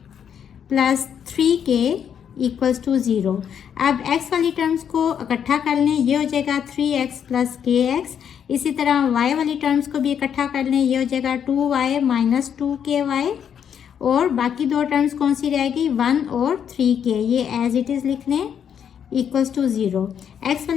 plus 3k equals to 0। अब x वाली टर्म्स को इकट्ठा कर लें, ये हो जाएगा 3x प्लस kx। इसी तरह y वाली टर्म्स को भी इकट्ठा कर लें, ये हो जाएगा 2y माइनस 2ky, और बाकी दो टर्म्स कौन सी रहेगी? 1 और 3k, ये एज इट इज़ लिख लें इक्वल्स टू 0। x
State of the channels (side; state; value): right; quieter; 8.3 dB